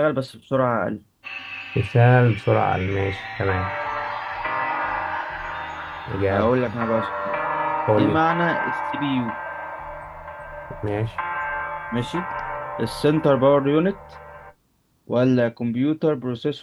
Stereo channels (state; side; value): identical; both; correlation 1.00